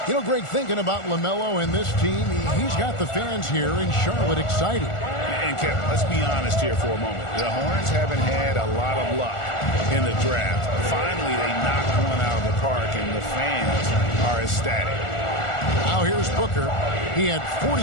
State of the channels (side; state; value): right; late; 1.4 ms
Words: You know, Greg, thinking about LaMelo and this team, he's got the fans here in Charlotte excited. And Kevin, let's be honest here for a moment. The Hornets haven't had a lot of luck in the draft. Finally, they knocked one out of the park, and the fans are ecstatic. Now here's Booker. He had